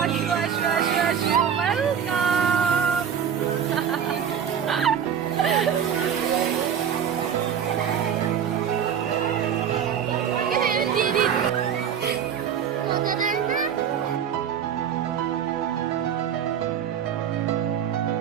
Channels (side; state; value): left; quieter; 8.3 dB